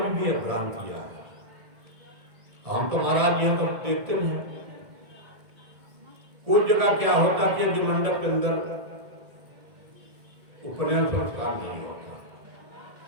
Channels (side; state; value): left; late; 1.7 ms